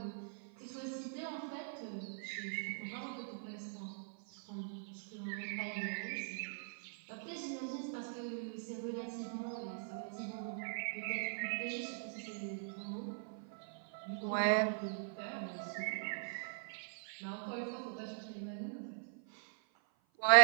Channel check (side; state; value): left; silent; 51 dB below the other